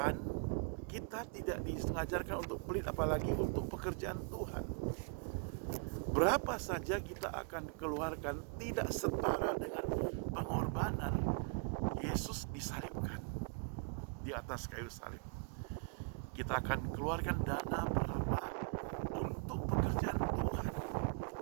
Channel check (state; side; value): quieter; left; 38.5 dB